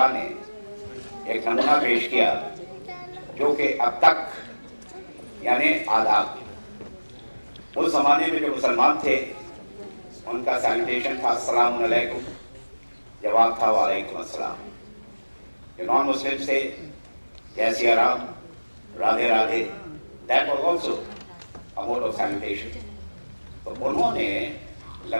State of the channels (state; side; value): inverted; both; correlation -1.00